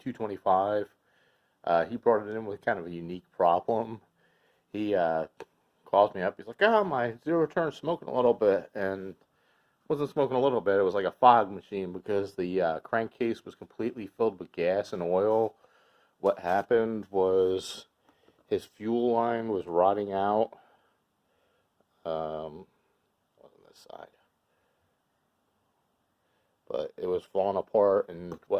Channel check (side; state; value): both; identical; correlation 1.00